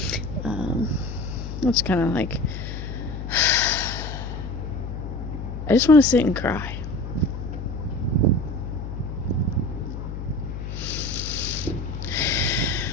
It's kind of like, I just want to sit and cry.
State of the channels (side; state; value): left; noise; hum, 7 dB below the sound